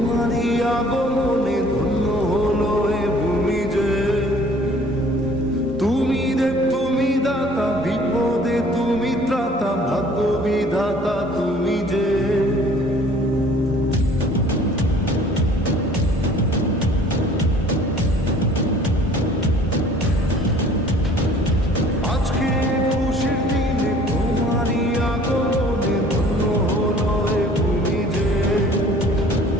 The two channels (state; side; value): normal; both; correlation 0.53